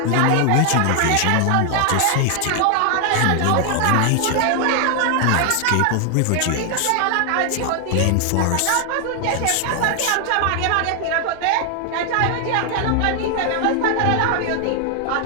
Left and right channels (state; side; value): different; both; correlation 0.00